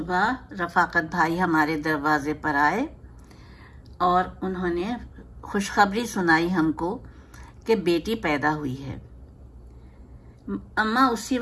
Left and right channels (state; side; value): identical; both; correlation 1.00